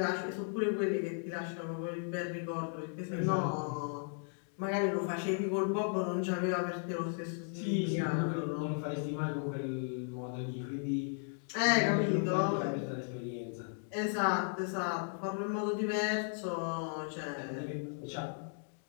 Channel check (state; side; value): silent; right; 54 dB below the other